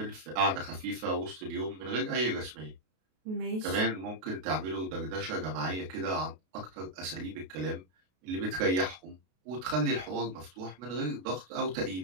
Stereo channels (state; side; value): late; left; 32 ms